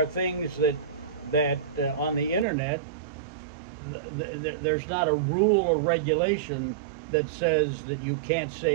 things that on the internet, there's not a rule or regulation that says that you can't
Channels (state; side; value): drops out; left; at 2.5 s